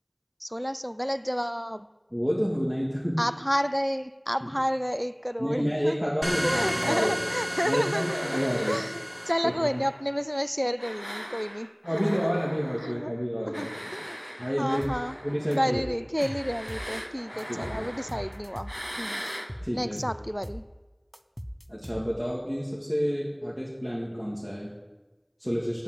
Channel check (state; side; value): identical; both; correlation 1.00